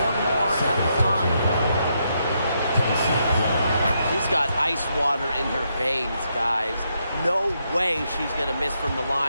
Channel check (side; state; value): both; inverted; correlation -0.79